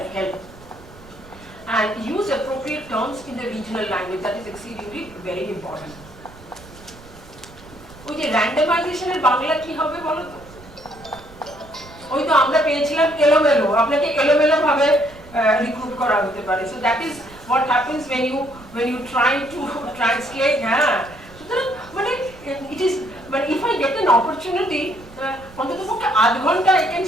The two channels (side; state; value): right; noise; rumble, 21 dB below the sound